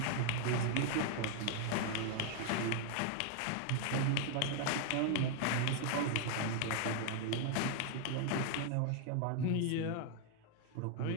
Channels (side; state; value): both; different; correlation 0.00